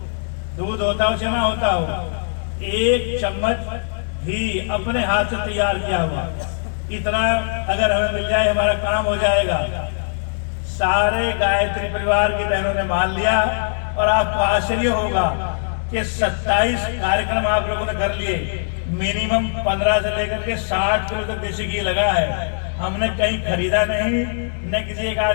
दूध होता हो चना होता हो, एक चम्मच घी अपने हाथ से तैयार किया हुआ, इतना अगर हमें मिल जाए हमारा काम हो जाएगा। सारे गायत्री परिवार की बहनों ने मान लिया और आपको आश्चर्य होगा कि 27 कार्यक्रम आप लोगों ने कर लिए। मिनिमम 15 से लेकर के 60 किलो तक देसी घी लगा है। हमने कहीं खरीदा नहीं, न किसी एक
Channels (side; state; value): right; silent; digital silence